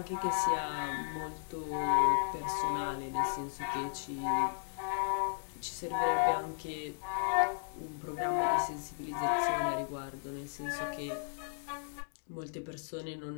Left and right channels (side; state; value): right; silent; digital silence